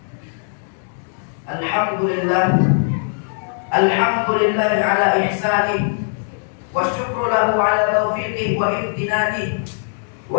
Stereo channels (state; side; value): silent; right; digital silence